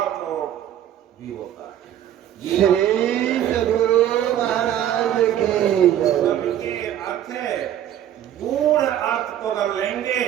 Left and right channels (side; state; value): left; quieter; 11.0 dB